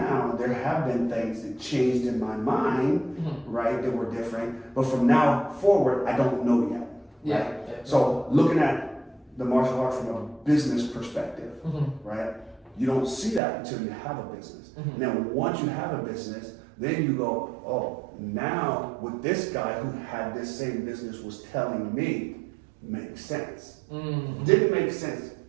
there have been things that changed in my mind, right, that were different. But from now forward, I don't know yet. Right? So looking at the martial art from a business perspective, right, you don't see that until you have a business. And then once you have a business, then you go, oh, now what this guy who had this same business was telling me makes sense. Didn't make sense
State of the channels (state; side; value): drops out; left; at 13.4 s